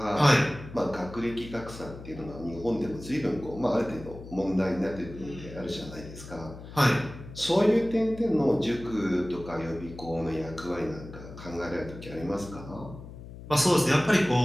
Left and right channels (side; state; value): left; noise; hum, 14 dB below the sound